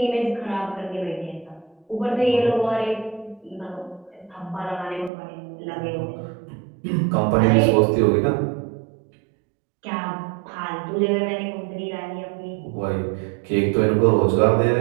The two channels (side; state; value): left; drops out; at 5.1 s